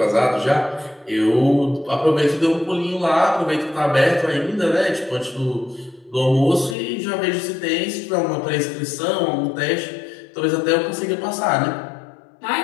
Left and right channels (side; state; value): right; drops out; at 6.8 s